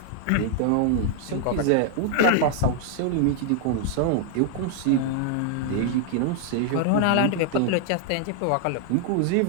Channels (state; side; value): different; both; correlation 0.00